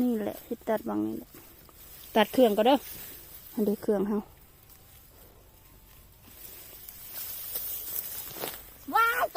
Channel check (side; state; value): both; identical; correlation 1.00